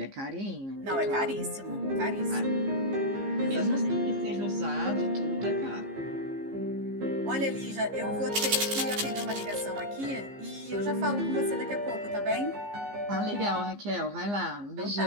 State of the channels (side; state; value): left; late; 15 ms